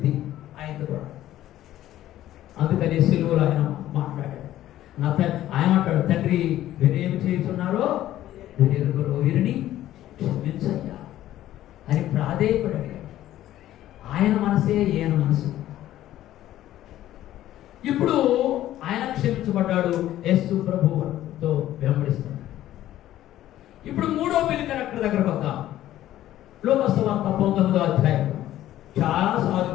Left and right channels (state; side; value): quieter; right; 13.5 dB